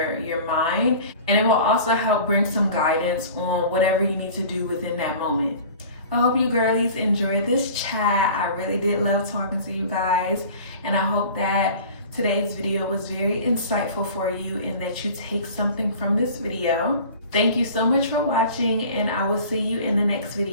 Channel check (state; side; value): inverted; both; correlation -0.42